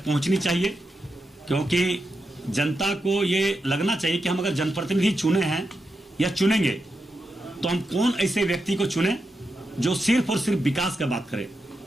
पहुंचनी चाहिए, क्योंकि जनता को ये लगना चाहिए कि हम अगर जनप्रतिनिधि चुने हैं या चुनेंगे तो हम कौन ऐसे व्यक्ति को चुने जो सिर्फ और सिर्फ विकास का बात करे।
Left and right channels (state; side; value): normal; both; correlation 0.87